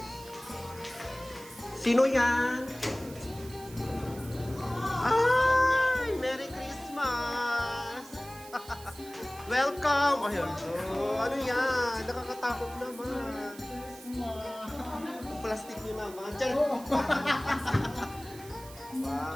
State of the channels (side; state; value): right; noise; hiss, 18 dB below the sound